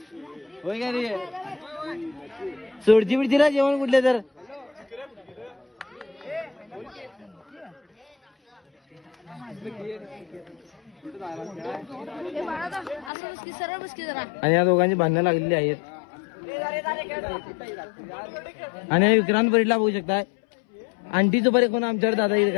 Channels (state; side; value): drops out; right; at 13.1 s